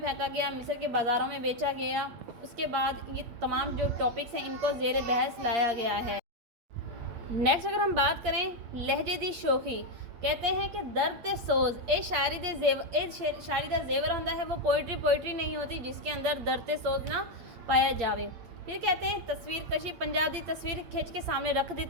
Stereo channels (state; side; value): late; left; 8.7 ms